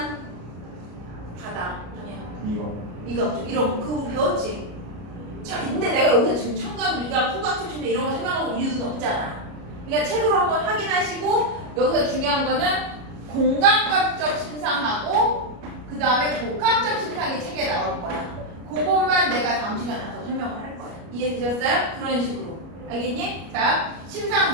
바다. 아니야. 미각 이런 거 그거 배웠지. 자, 근데 내가 여기서 지금 청각, 미각, 후각, 특징 이런 거 생각하고 이유는 없잖아. 그러니까 책으로 한번 확인하시고 여기서 중요한 거는 공감각적 심상하고 그 다음에 복합적 심상이 책에 나올 거야. 그것만 내가 다음 시간에 더 설명을 할 거야. 이해되셨어요? 그런 식으로. 알겠니? 자,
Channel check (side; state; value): left; late; 33 ms